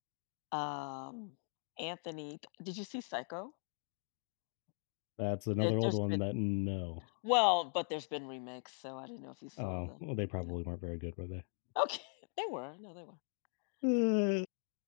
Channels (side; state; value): right; silent; 51 dB below the other